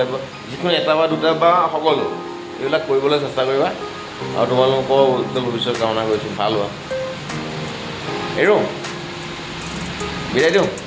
যিকোনো এটা বা দুটা বা সকলো এইবিলাক কৰিবলৈ চেষ্টা কৰিবা। আৰু তোমালোকৰ উজ্জ্বল ভৱিষ্যত কামনা কৰিছোঁ। ভাল হোৱা। এৰো বিদায় দিওঁ।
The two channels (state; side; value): identical; both; correlation 1.00